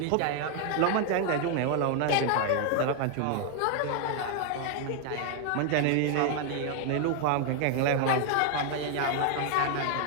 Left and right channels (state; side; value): different; both; correlation 0.00